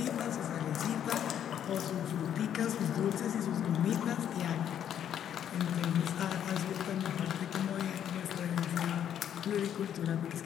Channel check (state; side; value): quieter; right; 9.7 dB